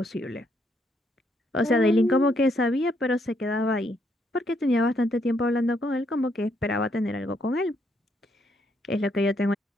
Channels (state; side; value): normal; both; correlation 0.74